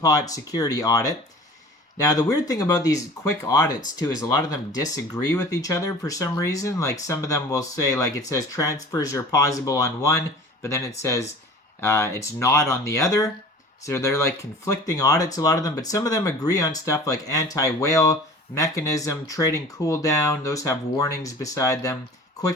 security audit. Now the weird thing about these quick audits too is a lot of them disagree with each other for some reason. Like some of them will say, like it says transfers are possible on one, but then it says it's not on the other. So they're like conflicting audits, a lot of them, but some of them agree on stuff like anti-whale mechanism, trading cooldown. Those have warnings beside them.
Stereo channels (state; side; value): normal; both; correlation 0.42